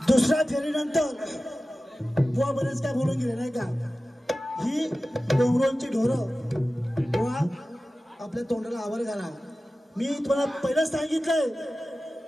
दुसऱ्या फेरीनंतर बुवा बरेच काय बोलून गेले नाही का? ही डोंगरांची ढोरं बुवा आपल्या तोंडाला आवर घाला. मी तुम्हाला पहिलं सांगितलंय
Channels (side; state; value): both; normal; correlation 0.95